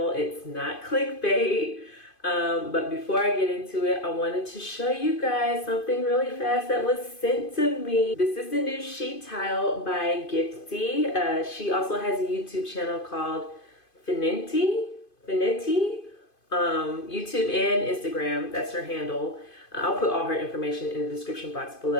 It's not clickbait. But before I get into it, I wanted to show you guys something really fast that was sent to me. This is the new sheet tile by Gifty. She also has a YouTube channel called FENETI, YouTube and Instagram. That's her handle. I'll put all her information in the description box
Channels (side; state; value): right; late; 2.5 ms